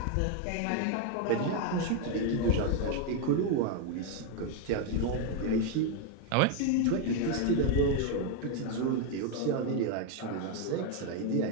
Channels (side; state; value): both; different; correlation 0.01